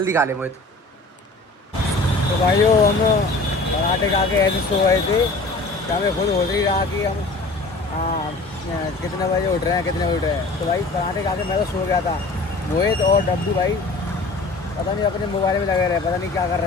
खा ले मोहित। तो भाइयों हम पराठे खा के ऐसे सो गए थे कि हमें खुद हो रही रहा कि हम कितने बजे उठ रहे हैं, कितने बजे उठ रहे हैं। तो भाई पराठे खा के मैं तो सो गया था। मोहित और डब्बू भाई पता नहीं अपने मोबाइल में लगे रहे, पता नहीं क्या कर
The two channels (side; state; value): right; quieter; 3.2 dB